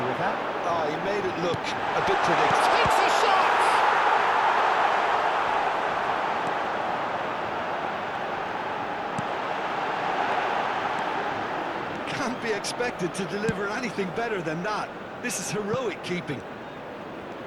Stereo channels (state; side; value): identical; both; correlation 1.00